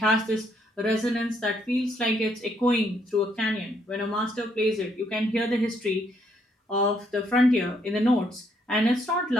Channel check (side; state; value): both; normal; correlation 0.72